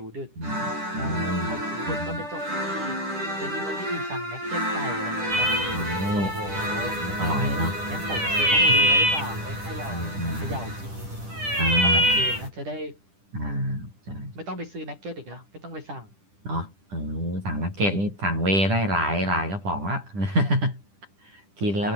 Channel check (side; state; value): left; late; 10 ms